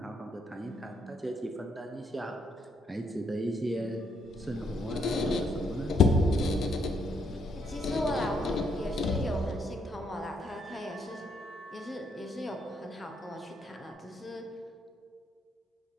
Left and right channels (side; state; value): both; normal; correlation 0.74